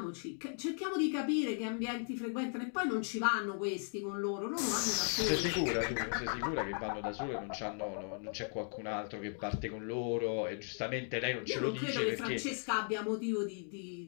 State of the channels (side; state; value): right; silent; 53 dB below the other